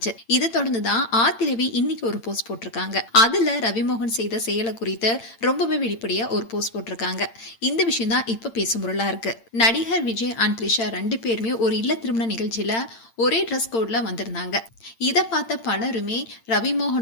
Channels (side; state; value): right; late; 8.8 ms